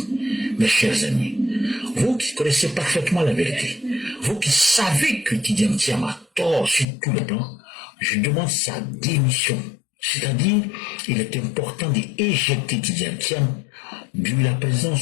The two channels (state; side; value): drops out; right; at 6.9 s